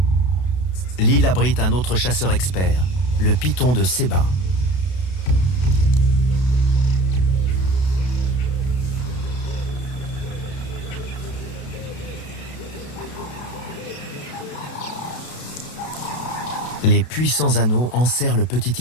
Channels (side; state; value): right; late; 32 ms